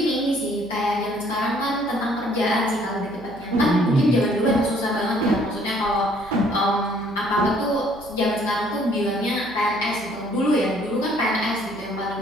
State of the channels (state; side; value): noise; right; hum, 23 dB below the sound